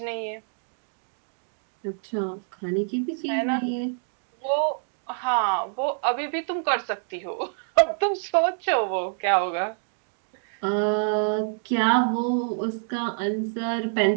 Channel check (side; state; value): left; silent; digital silence